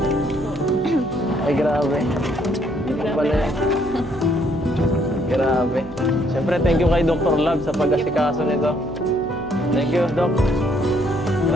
Ay, grabe. Dito pala yan. Grabe. Siyempre, thank you kay Dr. Love sa pag-asikaso nito. Thank you, Doc.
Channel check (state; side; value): noise; right; hum, 17 dB below the sound